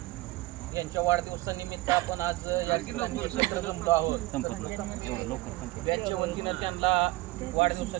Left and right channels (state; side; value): quieter; left; 19.5 dB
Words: यांच्या वाढदिवसानिमित्त आपण आज या ठिकाणी एकत्र जमलो आहोत. बॅचच्या वतीनं त्यांना